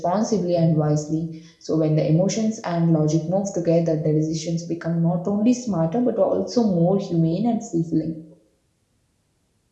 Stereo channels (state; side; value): identical; both; correlation 1.00